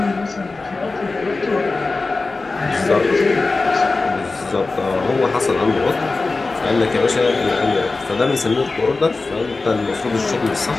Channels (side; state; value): right; quieter; 3.6 dB